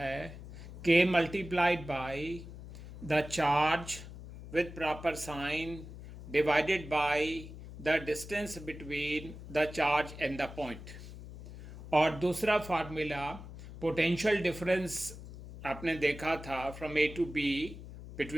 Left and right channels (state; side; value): noise; left; hum, 13 dB below the sound